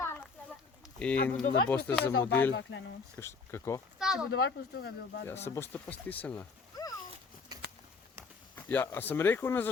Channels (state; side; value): quieter; right; 4.7 dB